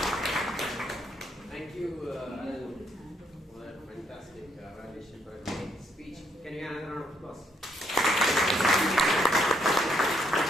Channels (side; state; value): both; normal; correlation 0.73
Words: Thank you, Alan, for that fantastic evaluation for a great speech. Can you have another round of applause?